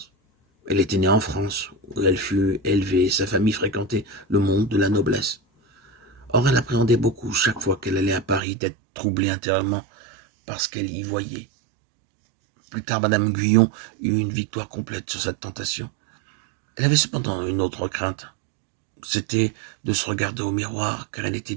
Elle était née en France, où elle fut élevée, et sa famille fréquentait le monde de la noblesse. Or, elle appréhendait beaucoup, chaque fois qu'elle allait à Paris, d'être troublée intérieurement par ce qu'elle y voyait. Plus tard, Madame Guyon eut une victoire complète sur cette tentation. Elle avait cependant une autre crainte. C'était de se regarder au miroir, car elle était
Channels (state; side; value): drops out; left; at 8.4 s